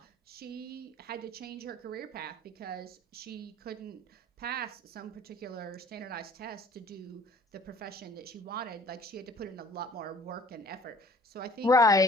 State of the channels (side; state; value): both; normal; correlation 0.52